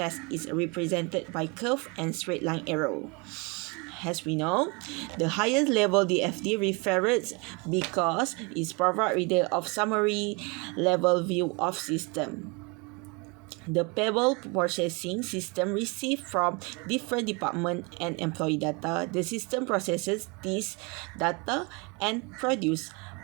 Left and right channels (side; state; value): left; quieter; 29.6 dB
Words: is represented by curve and straight line arrow. As we know, the highest level DFD refers because it provides reader of summary level view of system. The payable processing system receives from different department and employee data. The system processes this data and produce